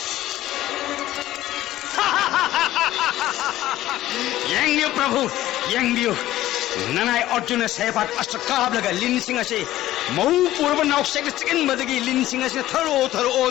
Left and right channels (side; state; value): right; quieter; 14.7 dB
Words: यंग प्रभु यंग ननाय अर्जुन सेपात अस्त्रकाब लगा लिन सिंह से मऊ पूर्व नौसेक चिकन बदगी लिन सिंह से थरो थरो